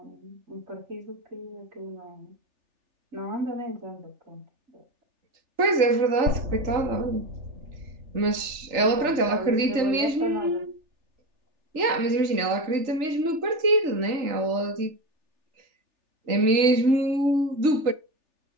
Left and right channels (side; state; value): left; late; 3.4 ms